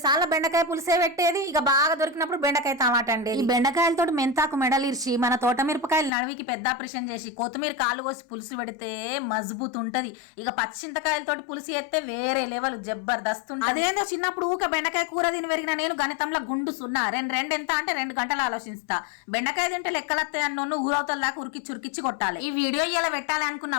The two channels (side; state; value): right; drops out; at 6.1 s